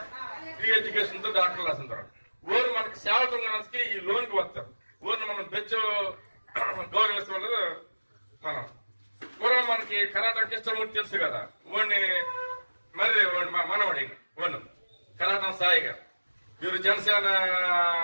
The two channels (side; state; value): both; inverted; correlation -1.00